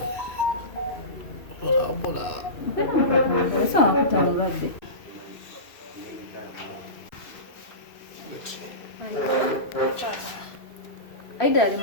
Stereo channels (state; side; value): late; right; 2.6 ms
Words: sawa kutangulabbe Aidah ali